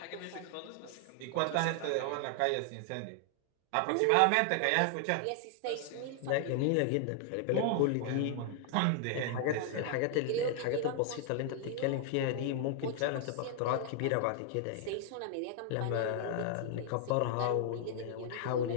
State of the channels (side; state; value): both; different; correlation 0.00